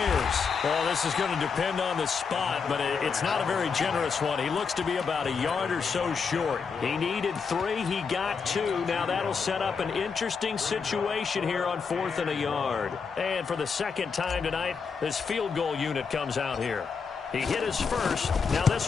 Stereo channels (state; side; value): quieter; right; 5.6 dB